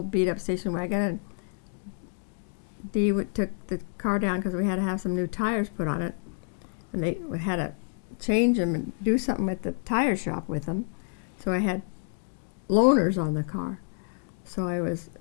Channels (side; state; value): right; silent; 59 dB below the other